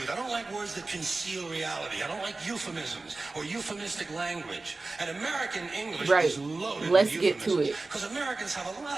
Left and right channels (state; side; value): quieter; left; 3.4 dB